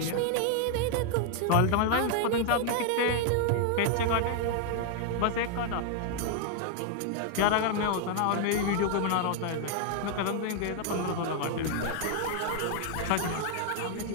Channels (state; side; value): different; both; correlation 0.00